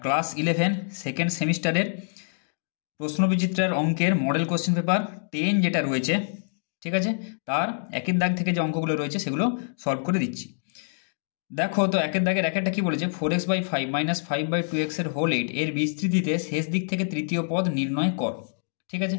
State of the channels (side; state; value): right; silent; digital silence